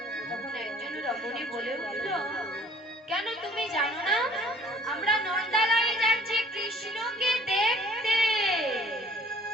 তখন একজন রমণী বলে উঠল, কেন তুমি জানো না আমরা নন্দালয়ে যাচ্ছি কৃষ্ণকে দেখতে।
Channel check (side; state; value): both; normal; correlation 0.54